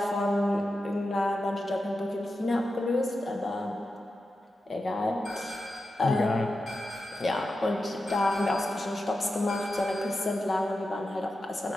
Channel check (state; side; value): normal; both; correlation 0.91